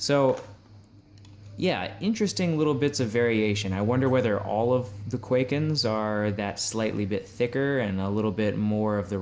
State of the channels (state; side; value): identical; both; correlation 1.00